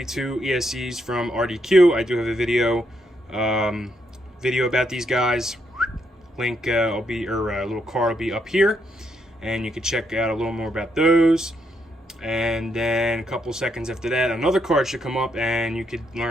ESCs from RDQ. I do have a video about these guys. Link a little card will be up here, and you can check out a little more about those. And then a couple seconds after that, another card should come up, and you could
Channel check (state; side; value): normal; both; correlation 0.77